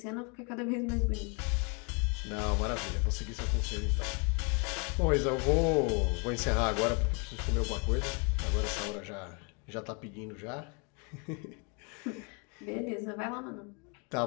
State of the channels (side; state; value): right; quieter; 34.4 dB